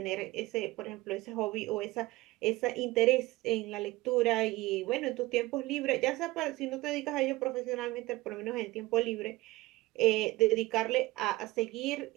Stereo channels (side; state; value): left; quieter; 19.4 dB